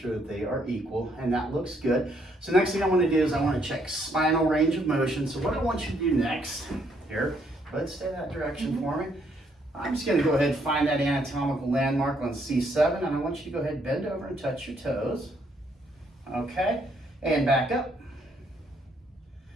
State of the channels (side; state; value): both; normal; correlation 0.71